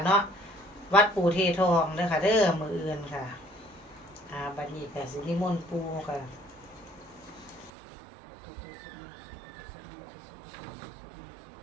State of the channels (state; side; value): drops out; left; at 7.7 s